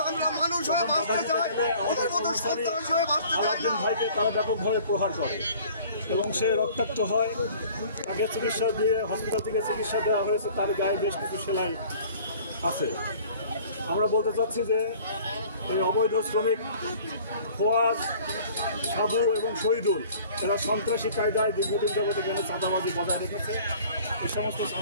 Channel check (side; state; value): both; inverted; correlation -0.50